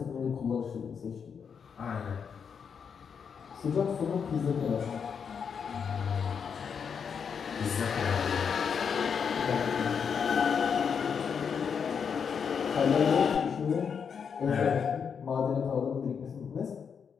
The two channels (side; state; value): right; quieter; 6.7 dB